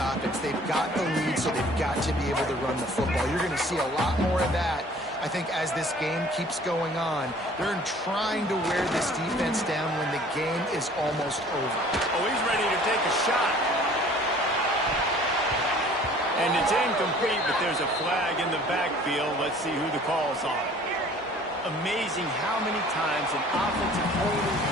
They've got the lead, so they've got to be able to run the football. You're going to see a lot more of that, I think, as this game keeps going on. They're trying to wear this defense down when the game is almost over. Oh, he's ready to take a shot. And it's incomplete, but there's a flag in the backfield. Let's see who the call's on. Amazing how many times an offensive holding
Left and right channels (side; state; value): both; normal; correlation 0.51